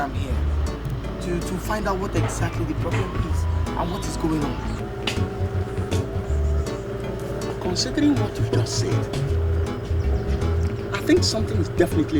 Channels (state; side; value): identical; both; correlation 1.00